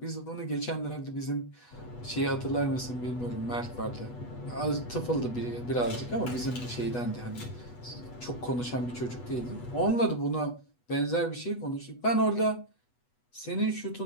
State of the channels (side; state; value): right; late; 8.2 ms